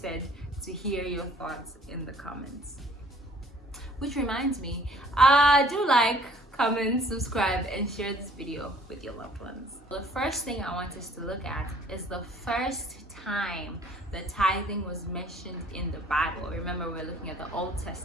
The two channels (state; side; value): normal; both; correlation 0.56